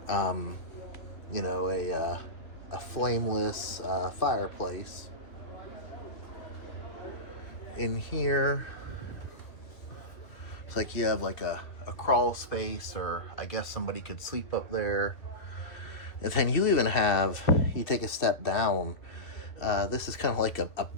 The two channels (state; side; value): late; right; 2.5 ms